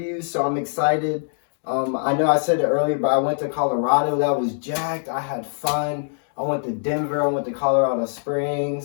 so I'm excited. I know I said it earlier, but I went to Colorado. That was jacked. I had fun. I went to Denver. I went to Colorado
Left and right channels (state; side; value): silent; right; digital silence